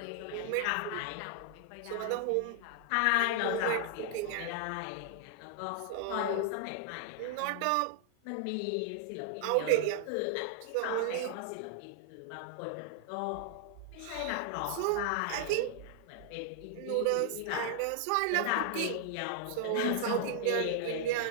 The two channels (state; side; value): different; both; correlation -0.01